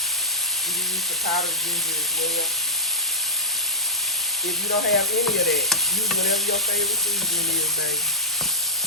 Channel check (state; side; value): normal; both; correlation -0.08